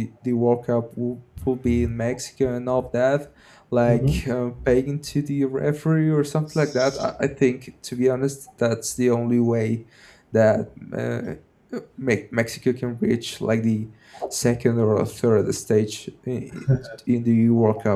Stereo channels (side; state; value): both; identical; correlation 1.00